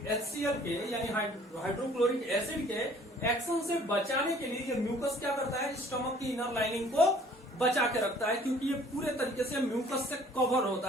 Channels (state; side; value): normal; both; correlation 0.55